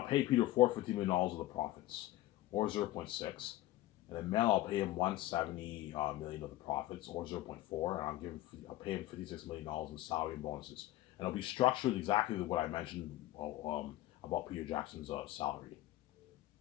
pay Peter $450 million of the profits, or 0.6. And then Mel, I'll pay him $170 million of the profits, or 0.4, and I'll pay him $56 million in salary and bonuses. And it'll be structured exactly what I mentioned about Peter Jackson's salary,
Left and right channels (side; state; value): right; quieter; 16.0 dB